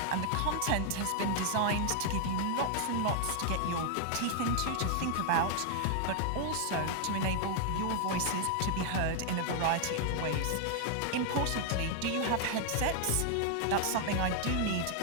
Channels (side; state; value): both; different; correlation 0.00